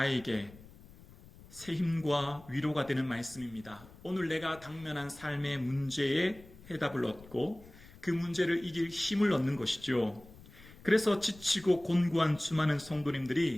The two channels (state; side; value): noise; left; rumble, 21 dB below the sound